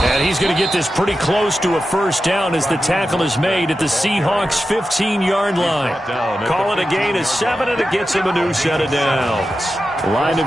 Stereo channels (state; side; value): normal; both; correlation 0.91